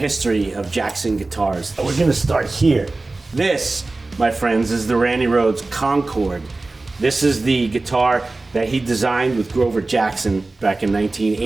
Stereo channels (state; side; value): quieter; left; 3.3 dB